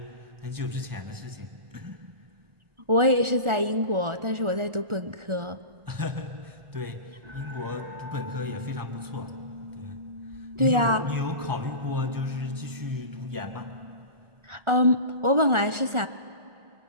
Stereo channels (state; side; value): late; left; 1.4 ms